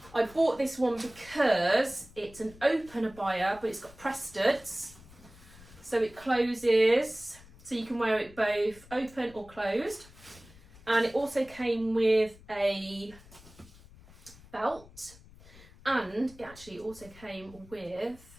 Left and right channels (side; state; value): left; noise; rumble, 22 dB below the sound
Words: I bought this one because it's an open abaya, but it's got press studs, so it closes, so you can wear it both open or closed. And it also came with a belt, and it actually also came with